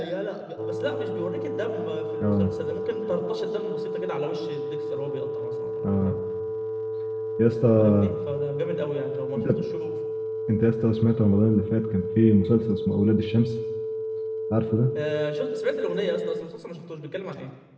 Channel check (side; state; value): both; identical; correlation 1.00